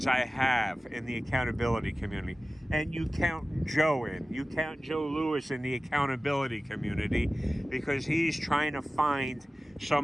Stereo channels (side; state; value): both; normal; correlation 0.96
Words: I have in the accountability community. And you count Joe in. You count Joe Lewis in the accountability community because he's trying to find